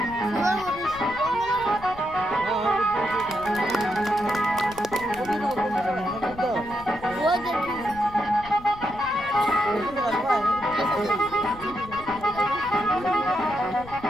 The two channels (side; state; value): left; noise; rumble, 17 dB below the sound